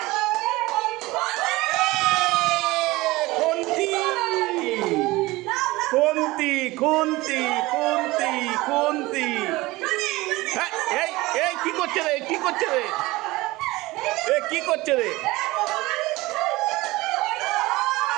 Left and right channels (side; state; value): left; quieter; 20.3 dB